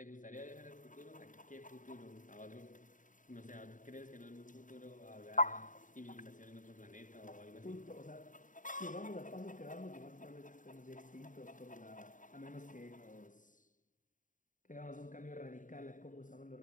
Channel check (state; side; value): late; right; 0.38 ms